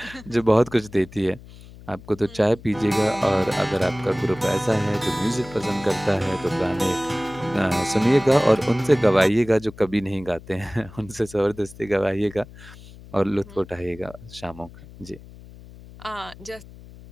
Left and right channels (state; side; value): noise; left; hum, 19 dB below the sound